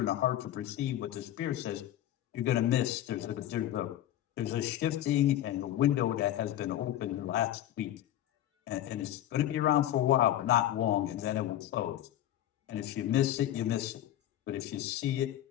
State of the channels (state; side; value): quieter; right; 12.6 dB